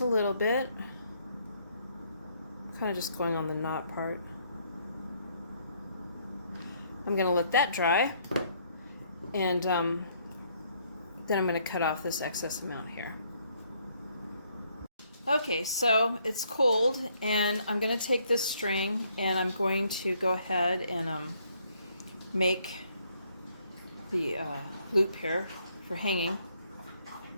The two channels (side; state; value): both; inverted; correlation -0.68